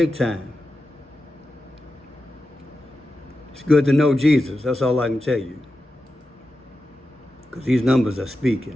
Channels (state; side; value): normal; both; correlation 0.91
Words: time. It's good to know Jesus. That's all I can tell you. Because these numbers are